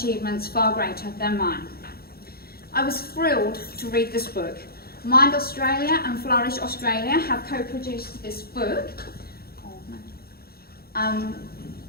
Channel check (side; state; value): right; late; 0.44 ms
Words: far greater than mine. I was thrilled to read this book. Mind Australia and Flourish Australia have co-produced this book